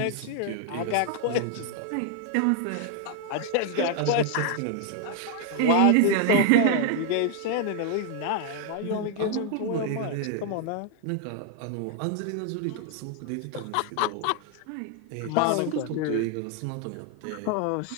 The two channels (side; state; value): both; different; correlation 0.00